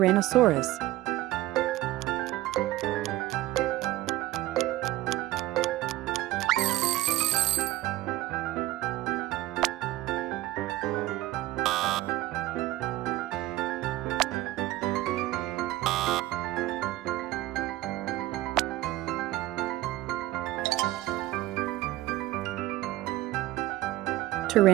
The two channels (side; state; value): left; quieter; 16.6 dB